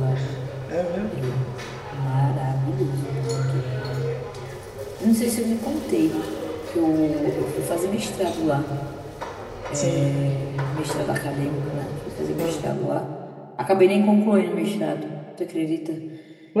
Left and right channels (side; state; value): both; identical; correlation 1.00